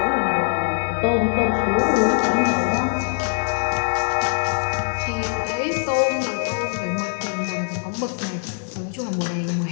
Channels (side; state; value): right; silent; digital silence